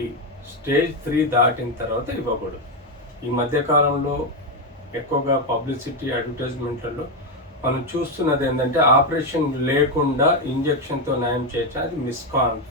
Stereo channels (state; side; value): normal; both; correlation 0.07